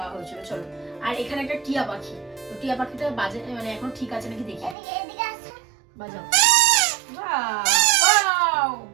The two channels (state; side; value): drops out; left; at 4.8 s